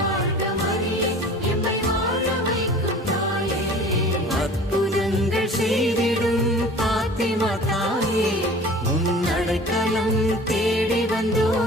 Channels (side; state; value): both; normal; correlation 0.44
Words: வாழ்க மரியே, எம்மை வாழ வைக்கும் தாயே. அற்புதங்கள் செய்திடும் பாத்திமா தாயே, உன் அடைக்கலம் தேடி